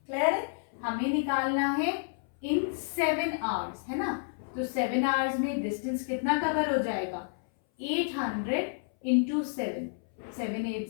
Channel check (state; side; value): silent; right; 58 dB below the other